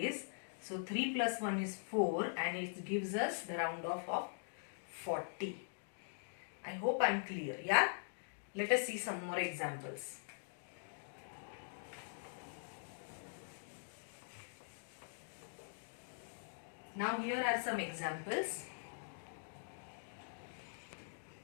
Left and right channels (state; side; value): silent; right; digital silence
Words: So 3 plus 1 is 4, and it gives us the round off of 40. I hope I am clear. Yeah? Let us see some more examples. Now here are some examples.